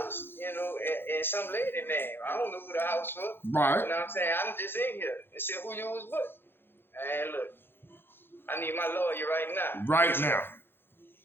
you know, and some lady name. I don't know who the house was. Right. You know what I'm saying? I'm just in here. They said who you was with. And look, I need my lawyer right now. Right now.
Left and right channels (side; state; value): right; late; 0.10 ms